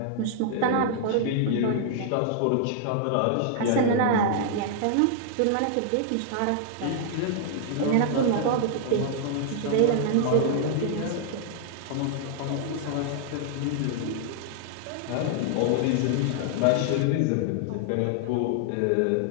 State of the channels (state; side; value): different; both; correlation -0.01